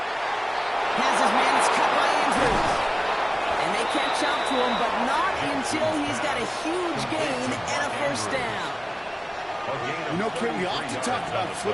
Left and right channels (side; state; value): both; identical; correlation 1.00